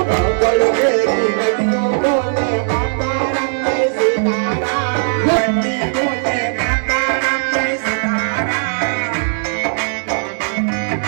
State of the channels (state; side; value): silent; left; digital silence